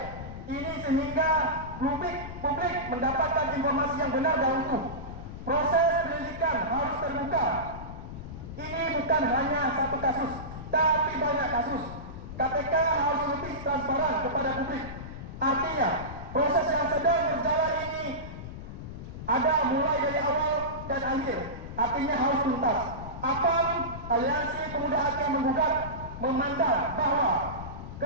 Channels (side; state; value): left; noise; rumble, 10 dB below the sound